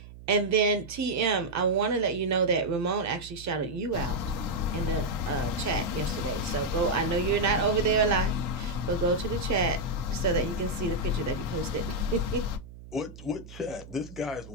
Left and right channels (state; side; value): noise; right; hum, 16 dB below the sound